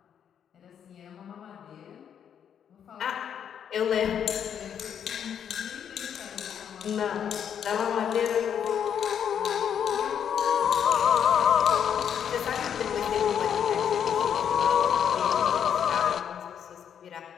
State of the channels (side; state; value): right; quieter; 8.5 dB